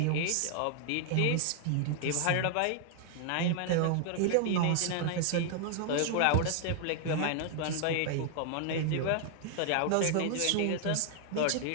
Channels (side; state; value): both; different; correlation 0.00